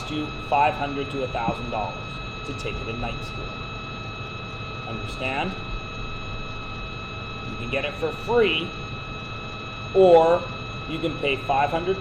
you $500 to $1,000 to take it in night school. Understand? You can get it for free, or you can pay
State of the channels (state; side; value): identical; both; correlation 1.00